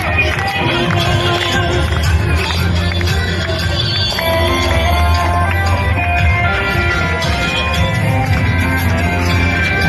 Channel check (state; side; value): identical; both; correlation 1.00